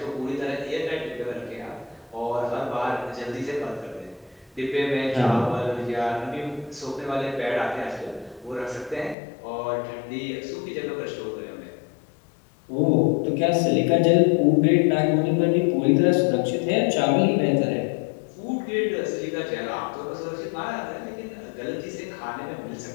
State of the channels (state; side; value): drops out; right; at 9.2 s